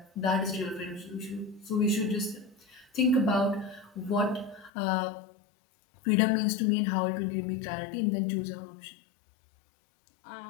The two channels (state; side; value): drops out; right; at 4.7 s